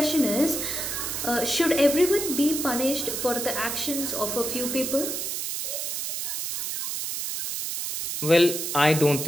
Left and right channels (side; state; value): right; noise; hiss, 3 dB below the sound